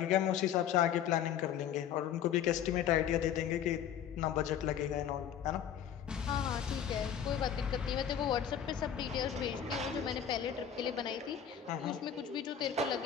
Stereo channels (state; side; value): quieter; right; 9.1 dB